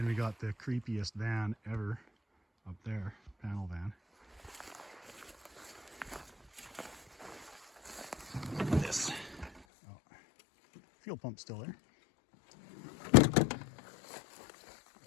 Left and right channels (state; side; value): drops out; right; at 9.6 s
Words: we got the creepiest van ever up there, panel van. This. Oh, fuel pump still there.